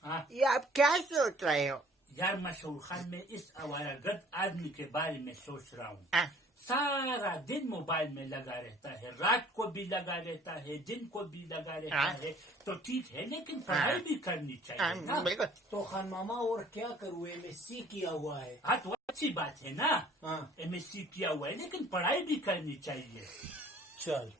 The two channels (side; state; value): both; normal; correlation 0.54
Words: हाँ ये आप क्या सोच रहे हो? यार मशहूर खान मैं इस आवारागर्द आदमी के बारे में सोच रहा हूँ। हाँ। सारा दिन मोबाइल में लगा रहता है, रात को भी लगा रहता है, दिन को भी लगा रहता हाँ। है। तो ठीक है, लेकिन पढ़ाई भी करनी चाहिए ना। बिल्कुल। तो खान मामा और क्या करूँ, MSc किया हुआ है। हाँ तो अच्छी बात है ना, हाँ। MSc किया हुआ है, लेकिन पढ़ाई भी करनी चाहिए। चल